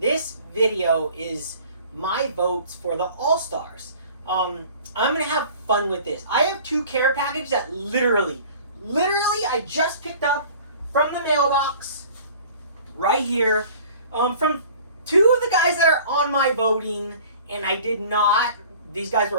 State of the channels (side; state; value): both; inverted; correlation -0.47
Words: video is my votes for the All-Stars. I'm gonna have fun with this. I have two care packages that literally I just picked up from the mailbox right here from two of the guys that are on my voting, and I did not. These guys